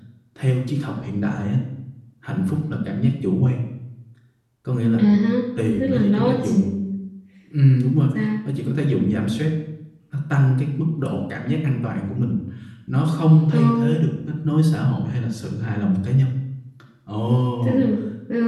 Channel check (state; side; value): identical; both; correlation 1.00